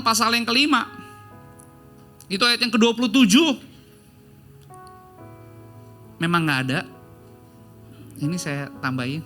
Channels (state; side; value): identical; both; correlation 1.00